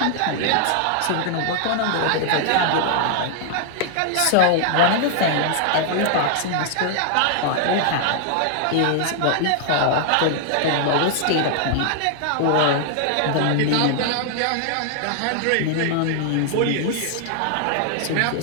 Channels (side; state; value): both; different; correlation 0.00